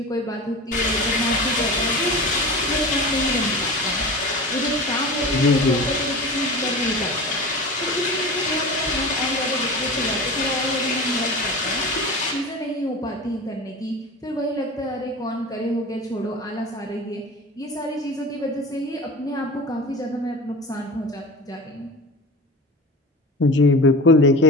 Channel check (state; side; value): normal; both; correlation 0.32